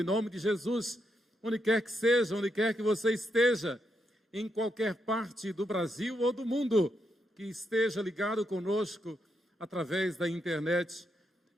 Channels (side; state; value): both; normal; correlation 0.81